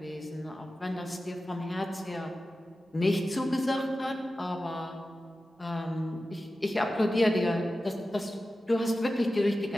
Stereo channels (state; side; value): normal; both; correlation 0.94